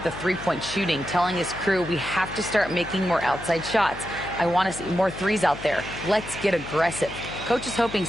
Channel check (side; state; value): left; noise; hum, 14 dB below the sound